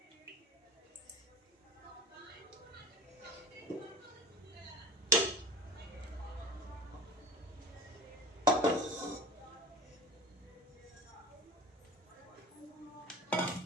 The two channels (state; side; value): normal; both; correlation 0.37